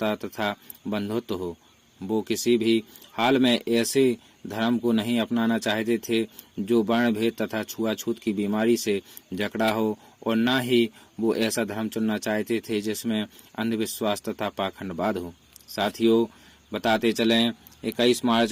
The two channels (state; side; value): identical; both; correlation 1.00